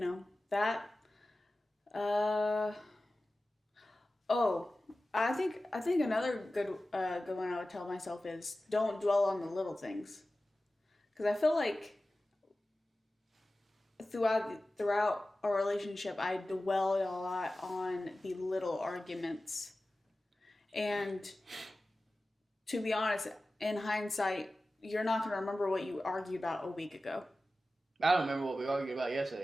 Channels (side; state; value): both; normal; correlation 0.95